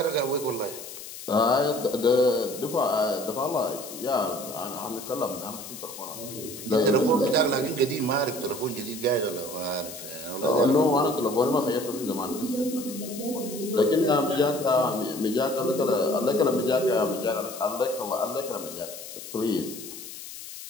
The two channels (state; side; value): noise; left; hiss, 12 dB below the sound